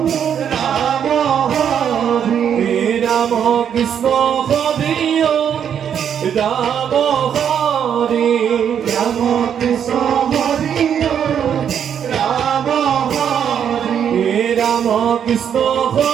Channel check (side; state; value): left; quieter; 8.5 dB